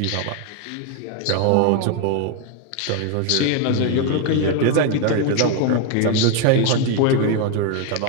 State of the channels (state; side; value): different; both; correlation 0.01